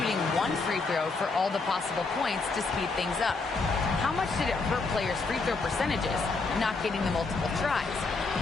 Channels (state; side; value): quieter; right; 4.0 dB